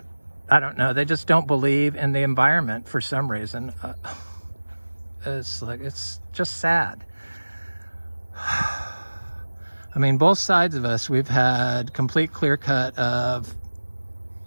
I don't know, they just don't believe in the environment for some reason. It's just sad. I mean, both sides of us, we've had complete clear cut of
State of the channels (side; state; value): both; inverted; correlation -1.00